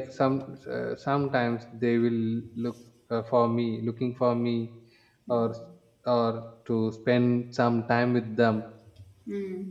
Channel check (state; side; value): identical; both; correlation 1.00